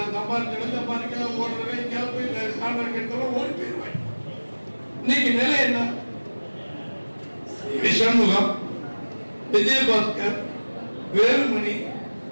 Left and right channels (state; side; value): inverted; both; correlation -1.00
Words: சம்பாதிக்க ஓடுறவே போய் கான்ட்ராக்ட் எடுத்தாலும் ஓடி போயிடுவாங்க. இன்னைக்கு நிலை என்ன? சண்முகம், விஜயபாஸ்கர், வேலுமணி,